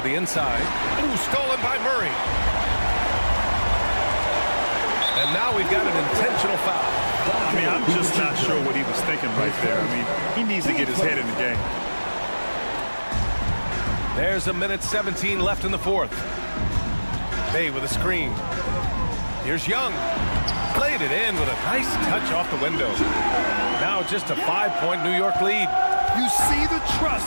the inside. Ooh, stolen by Murray. And now we've got an intentional foul. I mean, I'm just not sure what he was thinking right there. I mean, he needs to get his head in the game. There's a minute 17 left in the 4th. Bay with a screen. Here's Young. Played it in with a nice touch off the window. Now just a 5-point New York lead. You see the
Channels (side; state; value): both; inverted; correlation -1.00